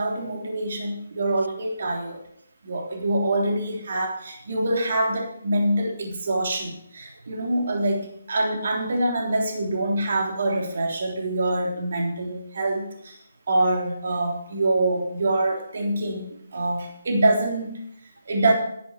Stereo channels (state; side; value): inverted; both; correlation -0.83